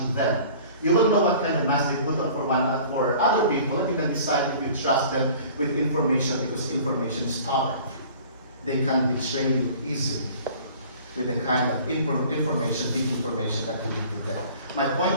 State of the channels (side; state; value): both; inverted; correlation -0.47